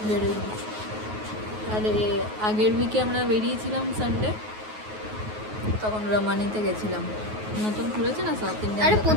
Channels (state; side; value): late; left; 9.4 ms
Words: বেরোইনি। আর আগের উইকে আমরা বেরিয়েছিলাম সানডে, তখন রমানিতে গেছিলাম, নতুন খুলেছে না সাউথ ইন্ডিয়ান। আরে